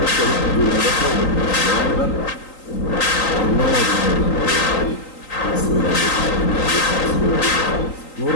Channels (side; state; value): right; late; 3.8 ms